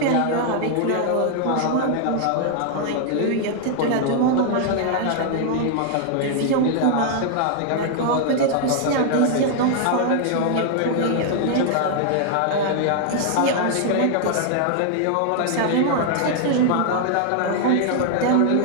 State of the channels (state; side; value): different; both; correlation 0.00